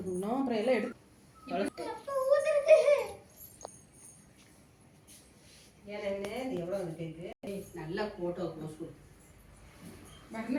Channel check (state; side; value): identical; both; correlation 1.00